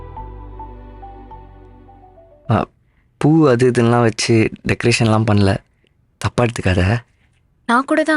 பூ அது இதெல்லாம் வச்சு டெக்கரேஷன்லாம் பண்ணல, தப்பா எடுத்துக்காத. நான் கூட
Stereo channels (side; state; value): both; identical; correlation 1.00